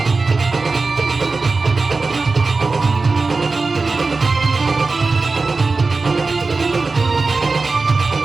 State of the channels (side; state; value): left; quieter; 3.9 dB